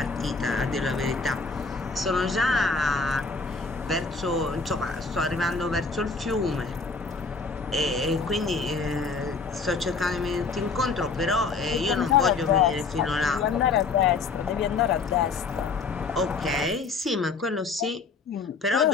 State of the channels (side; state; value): right; quieter; 4.4 dB